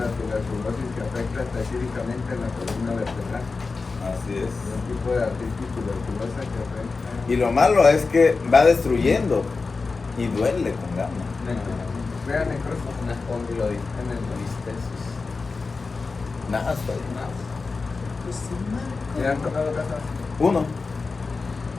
la tuberculosis que afecta específicamente en la columna vertebral. Así es. Es un tipo de artritis tuberculosa que afecta. Y lo malo es que va destruyendo y duele con ganas. Vean necrosis. una espondilolistesis. Nada, está bien. ¿Le han tocado casos? Uno.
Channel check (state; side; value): quieter; right; 4.2 dB